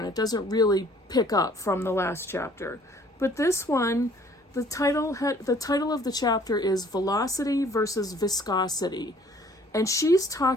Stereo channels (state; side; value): normal; both; correlation 0.57